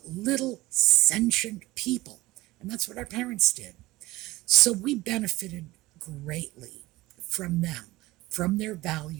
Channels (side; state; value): left; quieter; 19.0 dB